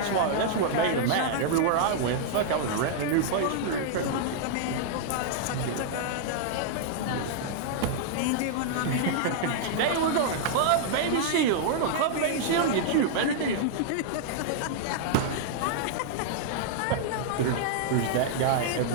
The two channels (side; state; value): both; different; correlation -0.01